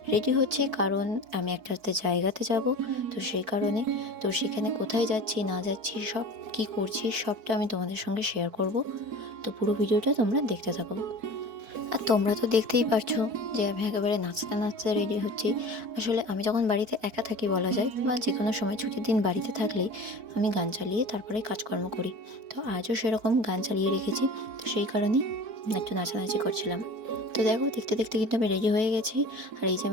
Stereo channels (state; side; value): late; left; 4.6 ms